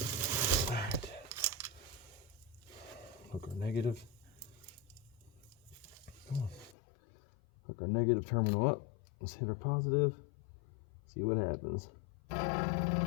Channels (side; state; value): right; drops out; at 6.8 s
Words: Hook our negative. Come on. Hook our negative terminal up. Let's hit our positive. See what happens.